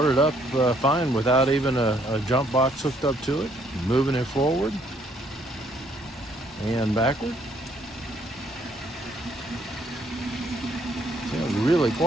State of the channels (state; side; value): normal; both; correlation 0.67